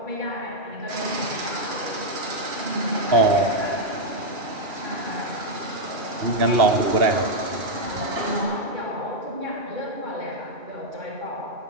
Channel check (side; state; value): left; late; 2.7 ms